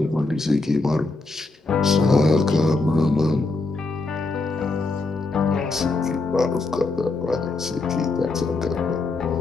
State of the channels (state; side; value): quieter; right; 3.4 dB